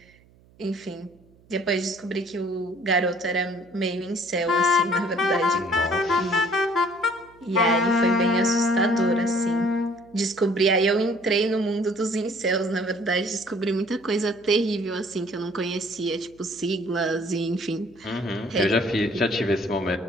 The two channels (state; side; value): noise; right; hum, 29 dB below the sound